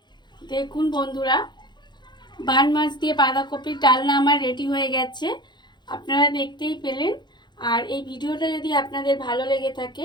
দেখুন বন্ধুরা, বান মাছ দিয়ে বাঁধাকপির ডালনা আমার রেডি হয়ে গেছে, আপনারা দেখতেই পেলেন। আর এই ভিডিওটা যদি আপনাদের ভালো লেগে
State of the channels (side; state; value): right; late; 0.21 ms